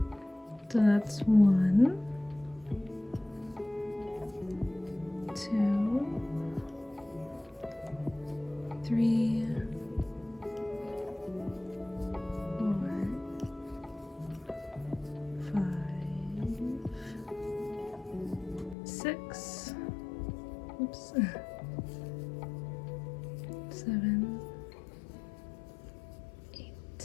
So that's 1, 2, 3, 4, 5, 6, oops, 7, 8,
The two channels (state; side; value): drops out; right; at 18.8 s